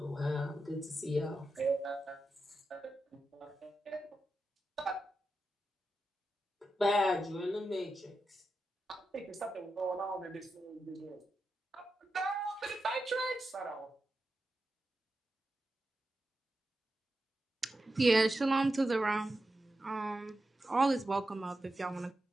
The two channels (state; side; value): normal; both; correlation 0.89